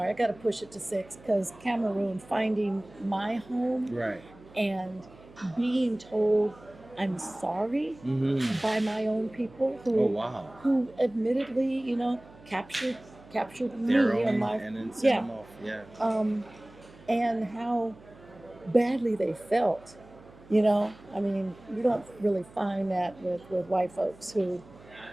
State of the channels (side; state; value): right; noise; hum, 23 dB below the sound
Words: I got to push it to 6 because Cameroon, finding my home Right. and being told I'm sorry by my own people who admittedly, captured me Their and own, my and then send yeah, them off. Yeah. and how badly they felt. I mean, you don't really find that with white folks who,